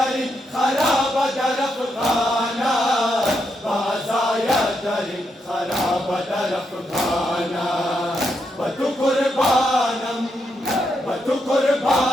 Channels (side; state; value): both; normal; correlation 0.81